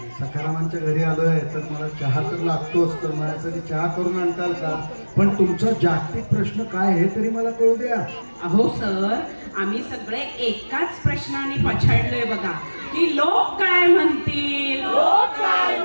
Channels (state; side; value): inverted; both; correlation -1.00